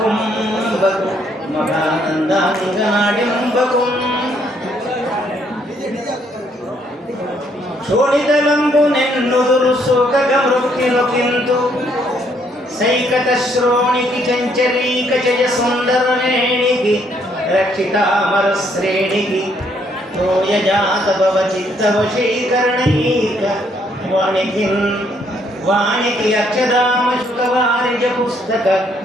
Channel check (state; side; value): normal; both; correlation 0.69